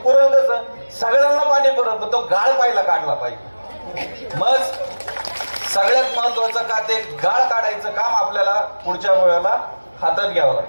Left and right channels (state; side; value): inverted; both; correlation -1.00